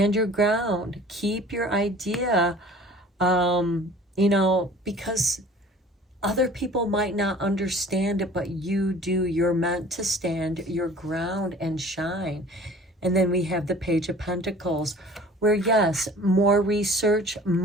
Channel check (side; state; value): both; normal; correlation 0.47